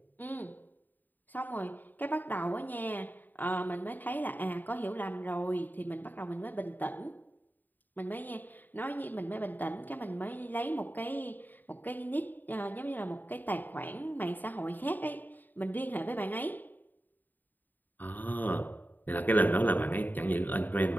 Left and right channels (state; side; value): late; right; 0.088 ms